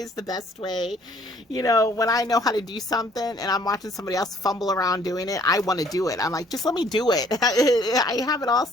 is the best way. When I know how to do something and I'm watching somebody else fumble around doing it, I want to do it. I'm like, just let me do it. I have it all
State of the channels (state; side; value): normal; both; correlation 0.60